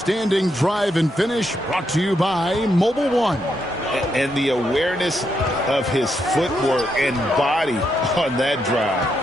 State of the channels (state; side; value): normal; both; correlation 0.80